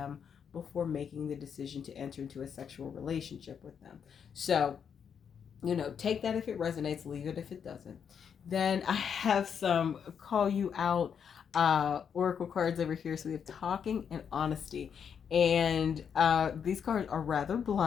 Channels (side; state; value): right; quieter; 7.4 dB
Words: before making the decision to enter into a sexual relationship with them. So, take that if it resonates, leave it if it doesn't. Then I have some call you out oracle cards over here. So we have talking and honesty. And these cards are rather